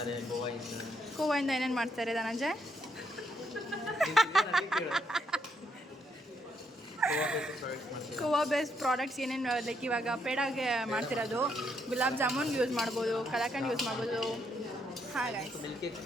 ಕೋವಾಯಿಂದ ಏನೇನು ಮಾಡ್ತಾರೆ ಧನಂಜಯ್? ಕೋವಾ ಬೇಸ್ಡ್ ಪ್ರಾಡಕ್ಟ್ಸ್ ಏನೇನು ಲೈಕ್ ಇವಾಗ ಪೇಡಾಗೆ ಮಾಡ್ತಿರೋದು ಗುಲಾಬ್ ಜಾಮೂನ್ ಯೂಸ್ ಮಾಡ್ಬೋದು, ಕಲಾಕಂಡ್ ಯೂಸ್ ಮಾಡ್ಬೋದು. ಹಾಂ ಗೈಸ್.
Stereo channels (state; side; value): normal; both; correlation 0.75